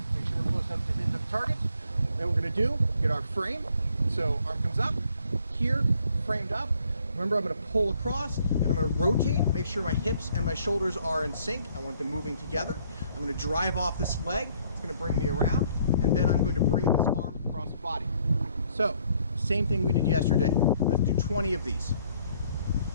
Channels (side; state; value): both; inverted; correlation -0.65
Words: Make sure we're close enough to hit the target. Then we're going to get our frame. So arm comes up, here, framed up. Remember, I'm going to pull across and I'm going to rotate, make sure my hips and my shoulders are in sync. I want them moving together. I'm going to drive off this leg. It's going to bring me around. And then I'm going to bring this arm across the body. So, same thing we did yesterday. Let's do 20 of these.